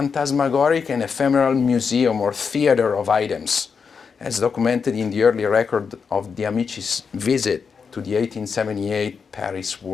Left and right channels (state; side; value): quieter; right; 5.8 dB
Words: and ephemeral museum or theater of items, as documented in the early record of the Amici's visit to the 1878 Paris